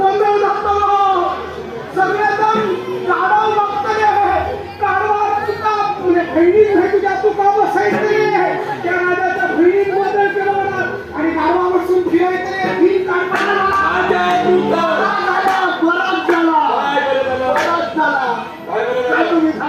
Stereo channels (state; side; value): identical; both; correlation 1.00